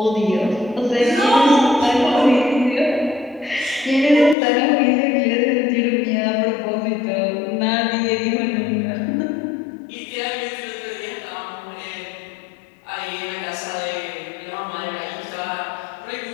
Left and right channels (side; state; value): right; drops out; at 4.4 s